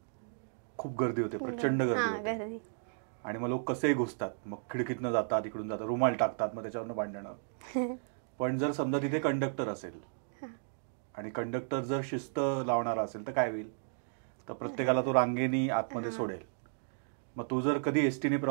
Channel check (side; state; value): left; silent; digital silence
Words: खूप गर्दी होते, प्रचंड गर्दी होते. आणि मग लोक कसेही घुसतात, मग खिडकीतनं जातात, इकडून जातात, रुमाल टाकतात, मग त्याच्यावरनं भांडणं. पण जर समजा तिथे कंडक्टर असेल आणि कंडक्टर जर शिस्त लावणारा असेल तर काय होईल? तर प्रत्येकाला तो रांगेनी आतमध्ये सोडेल. मग तू जर कधी एसटीने